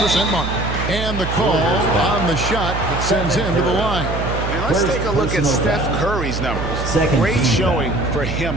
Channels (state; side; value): noise; right; hum, 4 dB below the sound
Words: mark. And the call on the shot that sends him to the line. And let's take a look at Steph Curry's numbers. Great showing for